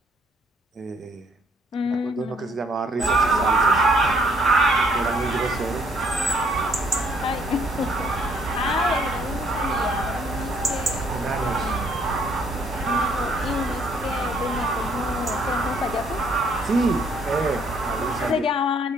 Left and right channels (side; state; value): both; normal; correlation 0.65